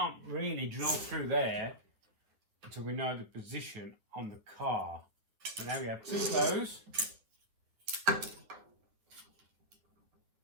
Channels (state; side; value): late; left; 9.7 ms